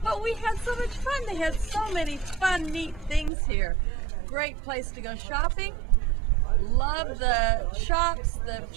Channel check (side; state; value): left; drops out; at 3.3 s